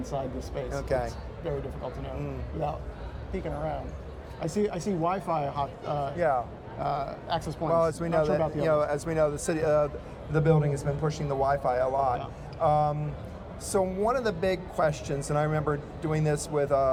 this space. Okay. It's very difficult to know without peeking around. I see Wi-Fi access points. Well, as we know, the city, the building has been pushing the Wi-Fi a lot. Yeah. So one of the big questions, and I remember doing this with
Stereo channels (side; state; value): both; identical; correlation 1.00